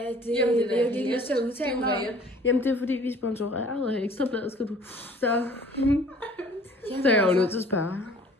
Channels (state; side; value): normal; both; correlation 0.52